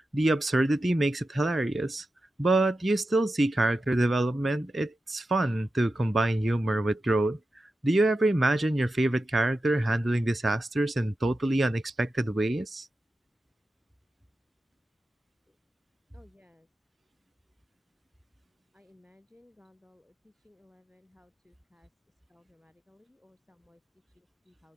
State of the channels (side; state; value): both; normal; correlation 0.91